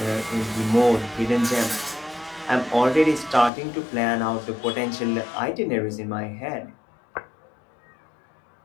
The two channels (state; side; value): drops out; right; at 3.5 s